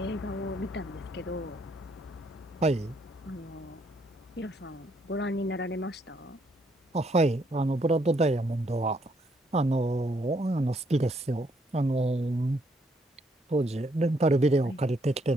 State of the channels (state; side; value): normal; both; correlation 0.71